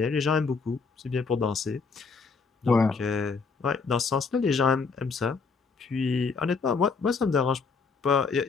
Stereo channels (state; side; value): quieter; right; 4.8 dB